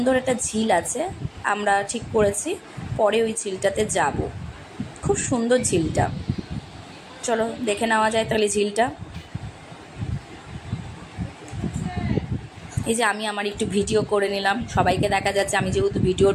একটা ঝিল আছে, আমরা ঠিক করেছি পরে ওই ঝিলটাতে যাব। খুব সুন্দর ঝিলটা, চলো দেখে নেওয়া যায় তাহলে ঝিলটা। এই যে আমি আমার একটু ভিডিও করে নিলাম, সবাইকে দেখা যাচ্ছে। আমি যেহেতু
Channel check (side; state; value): both; identical; correlation 1.00